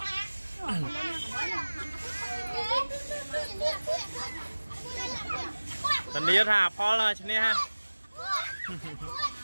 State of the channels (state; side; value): inverted; both; correlation -1.00